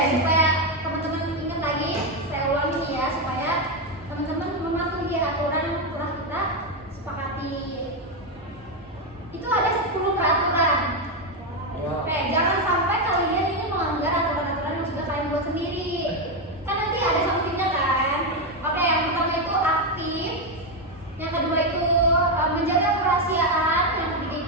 supaya teman-teman ingat lagi, saya ulangi nih ya, supaya teman-teman mematuhi aturan yang telah kita sepakati. Itu ada 10 peraturan. Oke, jangan sampai kalian ini melanggar aturan-aturan yang sudah kalian buat sendiri. Kan nanti ada sanksinya kan. Oke, yang pertama itu aktif, yang kedua itu menjaga kerahasiaan, yang ketiga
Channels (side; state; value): both; normal; correlation 0.07